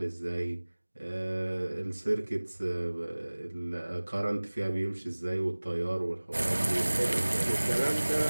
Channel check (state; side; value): inverted; both; correlation -1.00